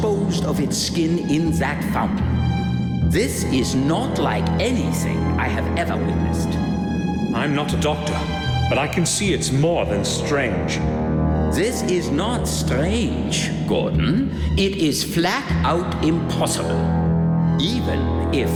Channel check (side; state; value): both; identical; correlation 1.00